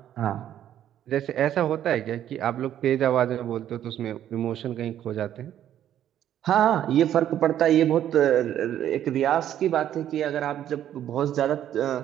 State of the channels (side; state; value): left; quieter; 11.0 dB